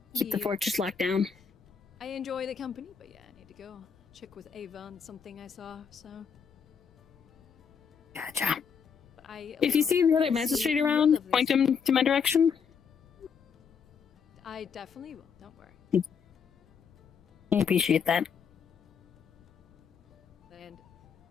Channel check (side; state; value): right; quieter; 6.5 dB